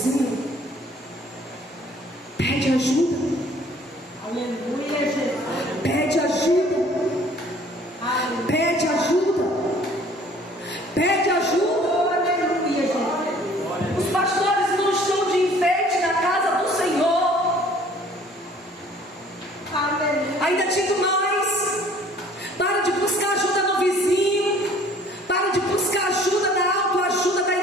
pede ajuda. Aleluia, Jesus. Pede ajuda. Pede ajuda. Pede ajuda. Aleluia, Jesus. Os pastores não estão de enfeite na casa do Senhor. Aleluia. Ainda digo mais: para de buscar ajuda no vizinho. Para de buscar ajuda na autoajuda da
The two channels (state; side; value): normal; both; correlation 0.54